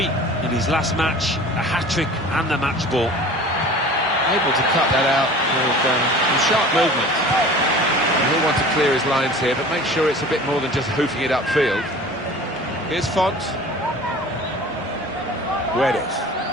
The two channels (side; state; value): both; normal; correlation 0.42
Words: in his last match, a hat-trick and the match ball. Able to cut that out with some sharp movement. And he'll want to clear his lines here, but make sure it's a bit more than just hoofing it upfield. Here's Font. Guedes.